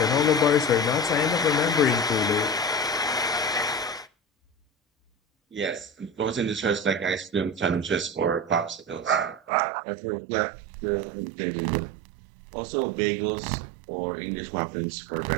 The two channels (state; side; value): drops out; left; at 9.5 s